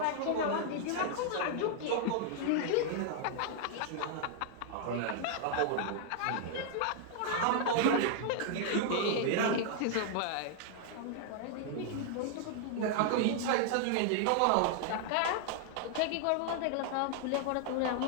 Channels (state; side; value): different; both; correlation 0.00